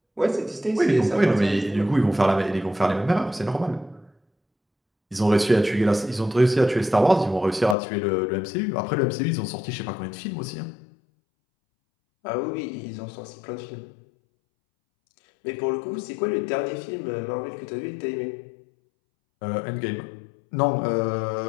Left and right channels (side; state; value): right; drops out; at 7.8 s